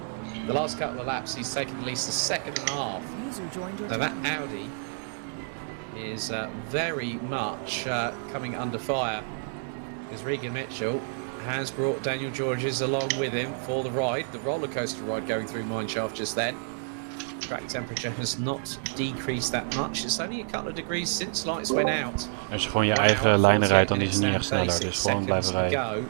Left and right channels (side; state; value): left; silent; 59 dB below the other